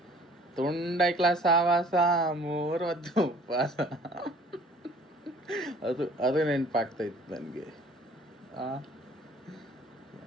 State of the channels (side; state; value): both; normal; correlation 0.53